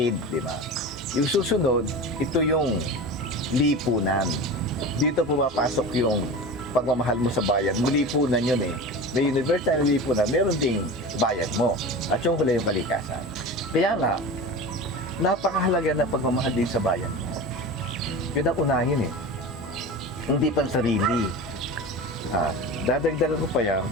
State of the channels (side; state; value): both; normal; correlation 0.30